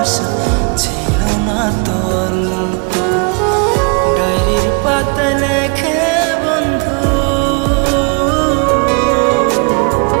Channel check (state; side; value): quieter; left; 33.8 dB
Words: ছিল না তো অল্প। ডায়েরির পাতায় লেখে বন্ধু,